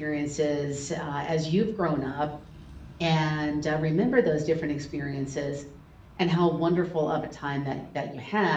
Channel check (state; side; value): identical; both; correlation 1.00